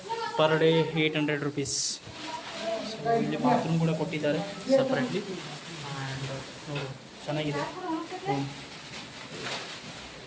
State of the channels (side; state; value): both; identical; correlation 1.00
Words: ಪರ್ ಡೇ 800 rupees. ಸೊ ಇಲ್ಲಿ ಬಾತ್ರೂಮ್ ಕೂಡ ಕೊಟ್ಟಿದ್ದಾರೆ ಸಪ್ರೇಟ್ಲಿ. ಆ್ಯಂಡ್ ನೋಡಿ, ಚೆನ್ನಾಗಿದೆ ರೂಮ್.